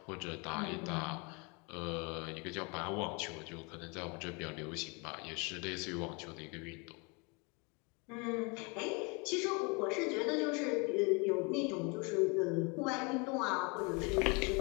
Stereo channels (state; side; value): quieter; right; 30.7 dB